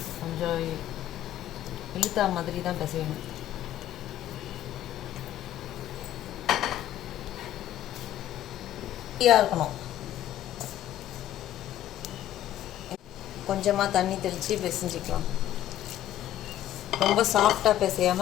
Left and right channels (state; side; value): quieter; right; 12.4 dB